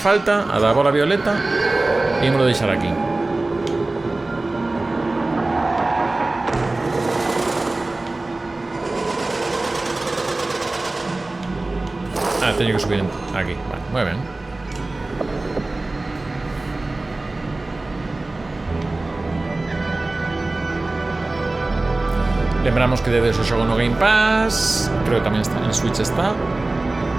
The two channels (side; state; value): left; quieter; 3.0 dB